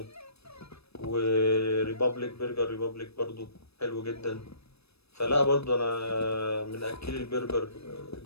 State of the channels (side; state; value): right; late; 0.78 ms